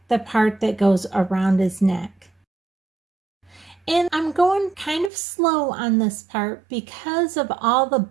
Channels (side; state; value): left; drops out; at 5.1 s